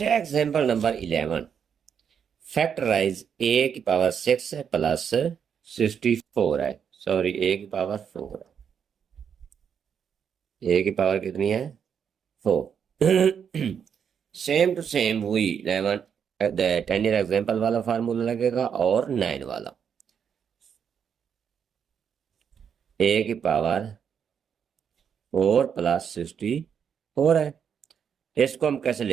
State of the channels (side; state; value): left; quieter; 7.5 dB